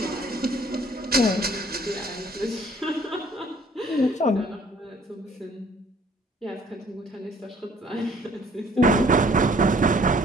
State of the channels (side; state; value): both; normal; correlation 0.58